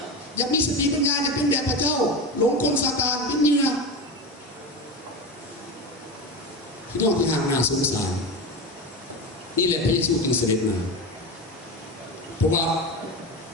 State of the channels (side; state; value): both; normal; correlation 0.23